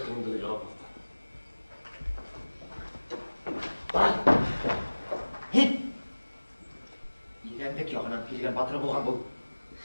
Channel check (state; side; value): inverted; both; correlation -1.00